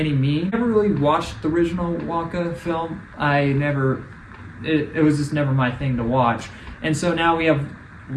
means. I never really watched the original Wonka film. It was just never my thing to watch. And so now we have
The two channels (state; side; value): identical; both; correlation 1.00